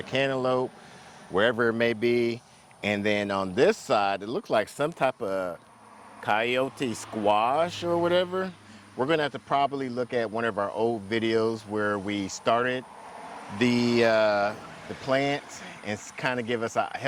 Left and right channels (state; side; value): identical; both; correlation 1.00